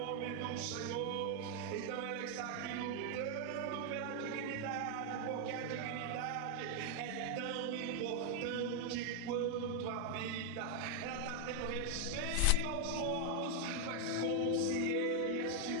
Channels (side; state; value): both; different; correlation 0.00